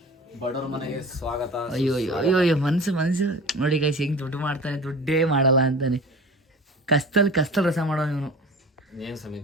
ಬಡವ್ರ ಮನೆಗೆ ಸ್ವಾಗತ. ಅಯ್ಯೋ ಮನ್ಸು ನೋಡಿ ಗೈಸ್, ಹೆಂಗೆ ದುಡ್ಡು ಮಾಡ್ತಾನೆ, ದುಡ್ಡೇ ಮಾಡಲ್ಲ ಅಂತಾನೆ. ಕಸ್ತಲ್ ರಸ ಮಾಡೋ ಇವನು. ಏನ್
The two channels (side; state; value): both; normal; correlation 0.37